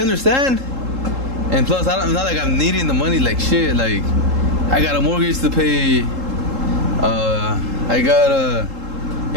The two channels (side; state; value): left; late; 3.7 ms